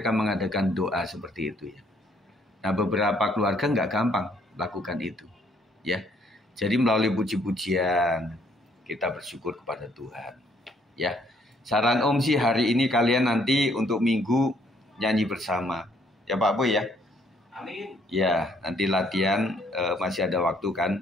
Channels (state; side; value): normal; both; correlation 0.66